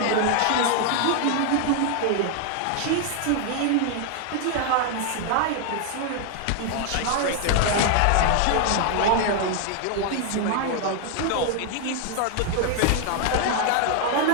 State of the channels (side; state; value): both; different; correlation 0.00